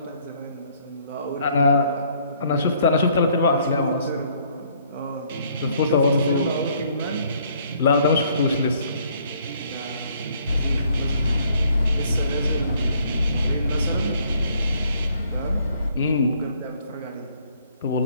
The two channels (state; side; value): inverted; both; correlation -0.64